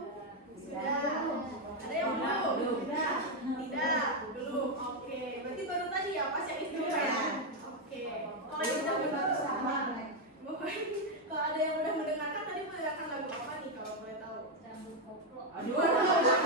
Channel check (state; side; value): normal; both; correlation 0.03